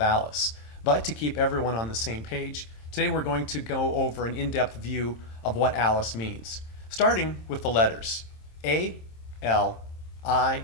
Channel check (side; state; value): right; late; 26 ms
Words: ALICE, but to keep everyone on the same page, today we're going to go over an in-depth view of what ALICE means, starting with the letters A, L, I,